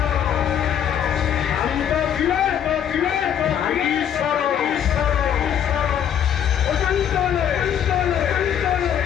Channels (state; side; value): quieter; right; 9.3 dB